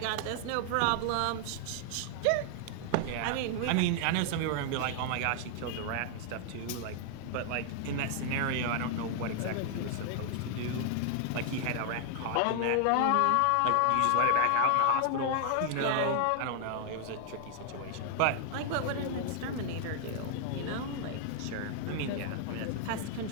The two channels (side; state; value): both; different; correlation 0.00